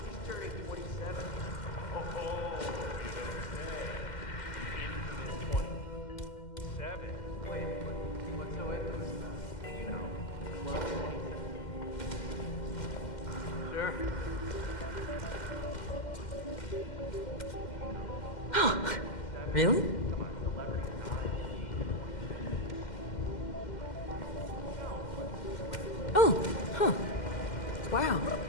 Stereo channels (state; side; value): late; right; 2.1 ms